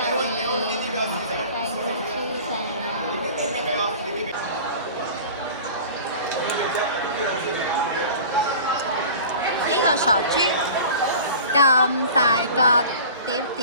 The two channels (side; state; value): both; inverted; correlation -0.40